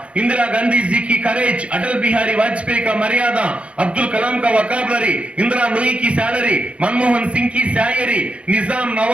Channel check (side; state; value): left; late; 0.061 ms